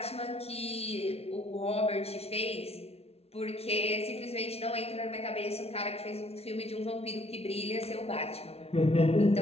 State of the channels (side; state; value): right; late; 0.30 ms